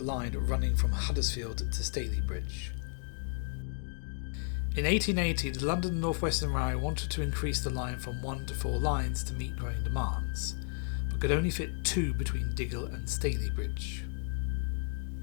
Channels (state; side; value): silent; right; 56 dB below the other